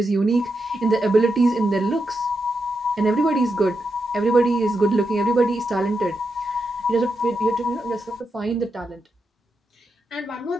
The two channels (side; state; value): both; normal; correlation 0.85